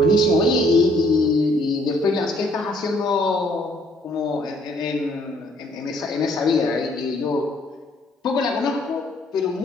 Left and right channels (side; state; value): both; normal; correlation 0.64